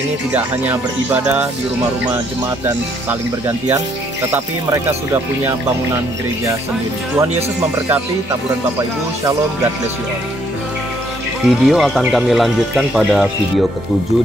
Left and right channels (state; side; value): normal; both; correlation 0.68